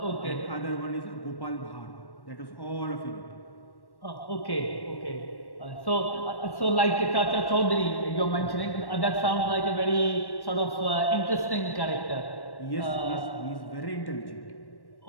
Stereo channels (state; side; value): late; right; 1.1 ms